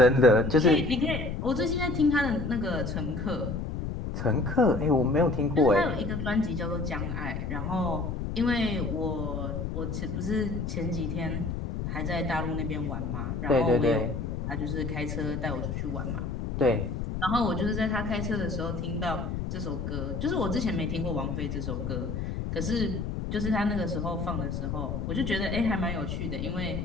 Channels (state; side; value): noise; left; rumble, 3 dB below the sound